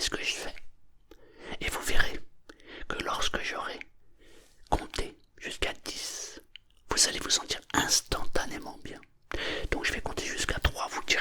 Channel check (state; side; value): identical; both; correlation 1.00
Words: ce que je fais. Et vous verrez que lorsque j'aurai compté jusqu'à 10, vous allez vous sentir instantanément bien. Donc je vais compter jusqu'à 3, vous